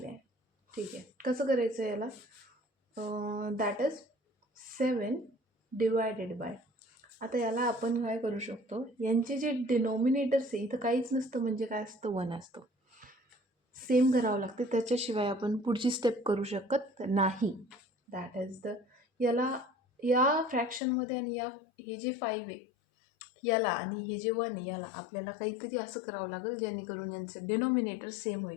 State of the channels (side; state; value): right; drops out; at 20.8 s